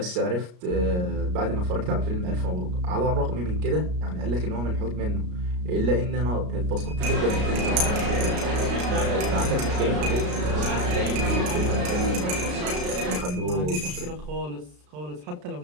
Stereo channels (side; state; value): left; late; 33 ms